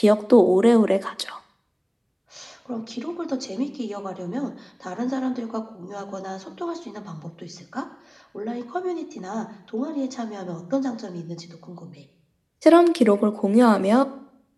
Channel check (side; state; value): both; identical; correlation 1.00